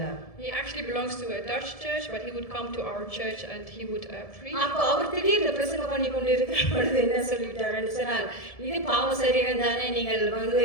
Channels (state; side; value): late; right; 1.7 ms